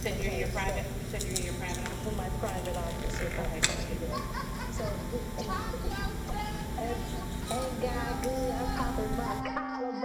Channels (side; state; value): both; identical; correlation 1.00